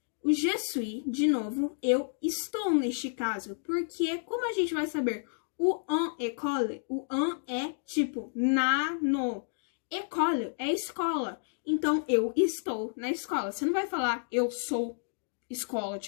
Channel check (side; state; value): right; silent; digital silence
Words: O je suis, de novo, eu estou neste caso, porque como a gente vai saber o en école, o en é tipo na, no. École é escola. Então, eu estou na escola. Você não vai falar eu sou escola,